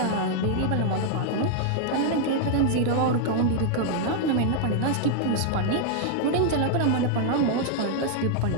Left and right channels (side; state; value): both; different; correlation -0.01